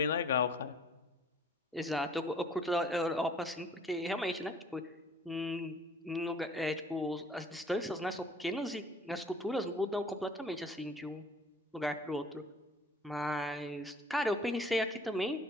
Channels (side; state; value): both; normal; correlation 0.53